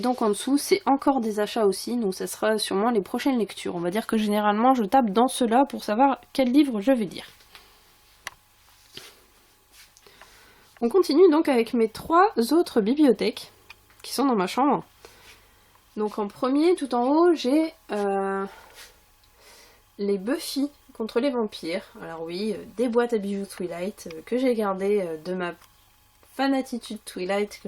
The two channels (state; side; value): identical; both; correlation 1.00